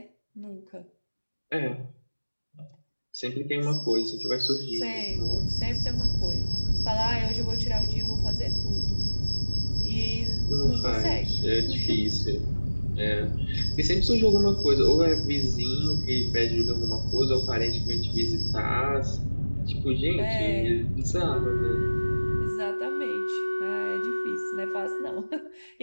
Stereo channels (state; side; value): inverted; both; correlation -1.00